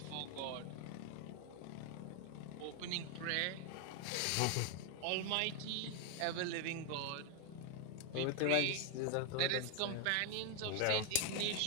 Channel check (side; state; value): both; different; correlation 0.00